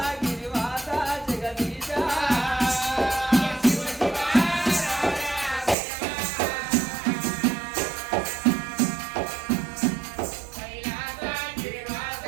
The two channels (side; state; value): left; drops out; at 5.8 s